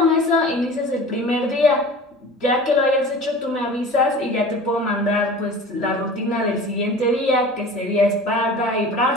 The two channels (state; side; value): normal; both; correlation 0.39